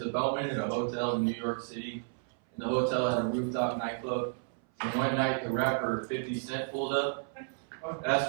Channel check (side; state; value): left; silent; 56 dB below the other